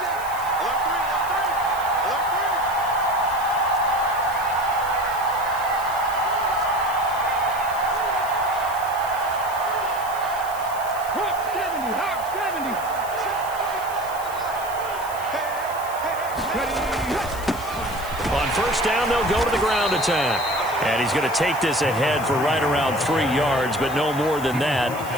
On 1st down, they'll go to the ground attack. And he's going to take this ahead for right around 3 yards, but no more than that.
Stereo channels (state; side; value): noise; left; hiss, 15 dB below the sound